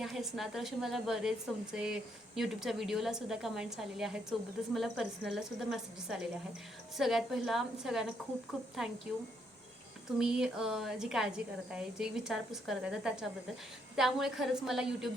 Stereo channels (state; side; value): normal; both; correlation 0.74